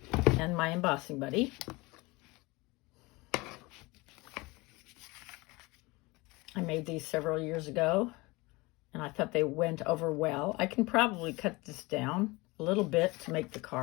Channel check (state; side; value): quieter; right; 23.5 dB